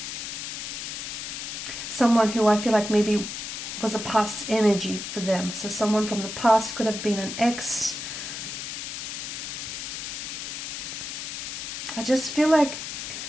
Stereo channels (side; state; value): left; noise; hiss, 6 dB below the sound